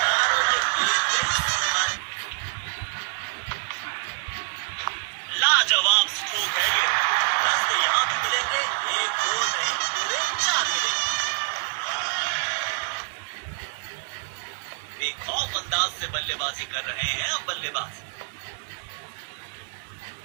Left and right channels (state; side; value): silent; left; 61 dB below the other